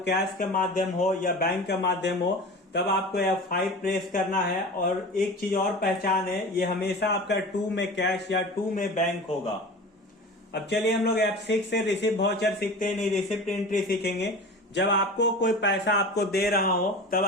के माध्यम हो या बैंक का माध्यम हो, तब आपको F5 प्रेस करना है। और एक चीज और पहचान है, ये हमेशा आपका टू में कैश या टू में बैंक होगा। अब चलिए हम लोग F6 से रिसिप्ट वाउचर सीखते हैं, नहीं रिसिप्ट एंट्री सीखेंगे। जब आपको कोई पैसा आपको दे रहा हो तब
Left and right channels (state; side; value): normal; both; correlation 0.34